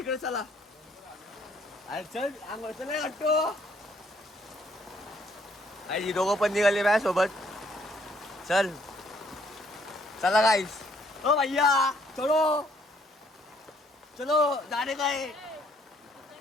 चला. अरे चल अंघोळ नाही वाटतो. आई दोघं पण निघाले माझ्या सोबत. चल चला गाईस. ओ भैया चलो चलो जाने का है.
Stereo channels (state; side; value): normal; both; correlation 0.66